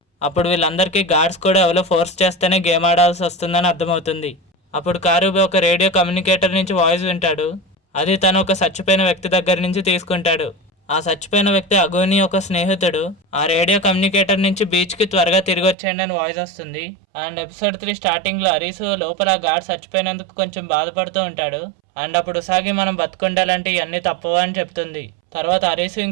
అప్పుడు వీళ్ళందరికీ గార్డ్స్ కూడా ఎవరో ఫోర్స్ చేస్తేనే గేమ్ ఆడాల్సి వస్తుందని అర్థమవుతుంది. అప్పుడు కారుబే ఒక రేడియో కమ్యూనికేటర్ నుంచి వాయిస్ వింటాడు. అది తను ఒక చచ్చిపోయిన వ్యక్తి దగ్గర నుంచి తీసుకుంటాడు. ఆ చచ్చిపోయిన వ్యక్తి అగోని ఒక స్నేహితుడు. ఆ రేడియో కమ్యూనికేటర్ నుంచి బీచ్ కి త్వరగా తిరిగి వచ్చేయండి అని వాయిస్ వస్తుంది. అండ్ ఎపిసోడ్ 3 స్టార్టింగ్ లో అరీసు లోపల గార్డ్ చచ్చిపోయినందుకు కొంచెం బాధపడుతూ ఉంటాడు. అండ్ అప్పుడు ఉసాగి మనం బతుకుండాలంటే ఇవన్నీ తప్పవా అని చెప్తుంది. తర్వాత అరీసు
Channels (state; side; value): drops out; left; at 15.8 s